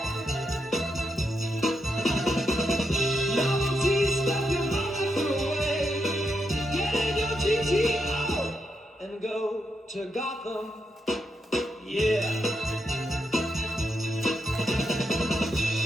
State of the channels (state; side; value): normal; both; correlation 0.83